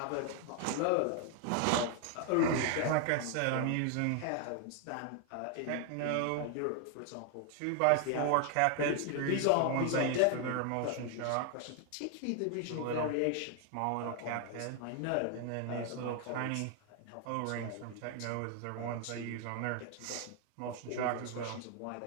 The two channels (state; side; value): different; both; correlation 0.00